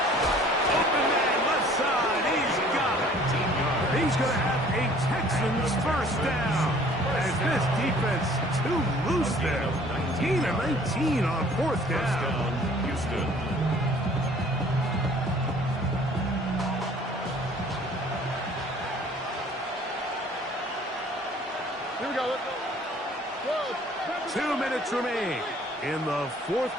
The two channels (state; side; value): normal; both; correlation 0.54